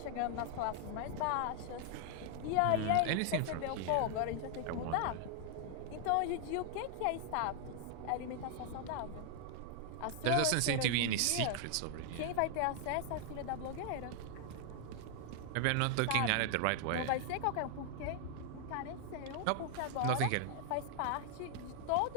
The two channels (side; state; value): both; different; correlation 0.00